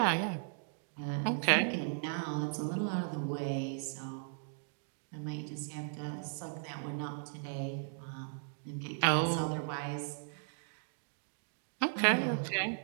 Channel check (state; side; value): silent; left; digital silence